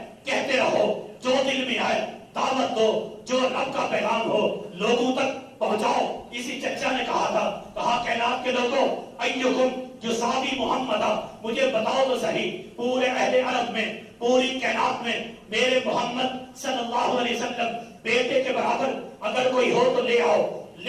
کہتے رہو, جو دل میں آئے دعوت دو, جو رب کا پیغام ہو لوگوں تک پہنچاؤ. اسی چچا نے کہا تھا, کہا کائنات کے لوگوں ایکم یصابی محمد, مجھے بتاؤ تو صحیح پورے اہل عرب میں, پوری کائنات میں میرے محمد صلی اللہ علیہ وسلم بیٹے کے برابر اگر کوئی ہو تو لے آؤ,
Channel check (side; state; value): both; identical; correlation 1.00